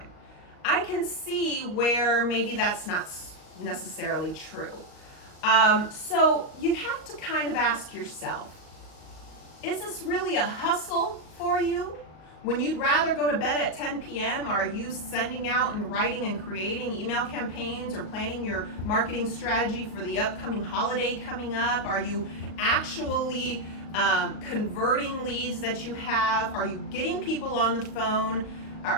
I can see where maybe that's not necessarily true. So you have to kind of ask yourself, is this really a hustle for you? When you'd rather go to bed at 10 p.m., are you sending out and writing and creating email campaigns or planning your marketing strategy for the upcoming holiday coming up? Are you actually converting leads that you have? Are you getting people on the phone?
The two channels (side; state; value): right; late; 38 ms